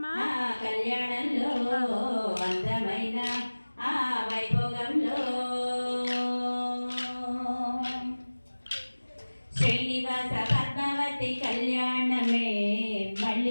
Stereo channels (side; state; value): both; inverted; correlation -1.00